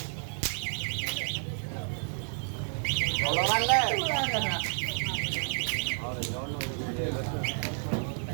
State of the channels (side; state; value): left; silent; digital silence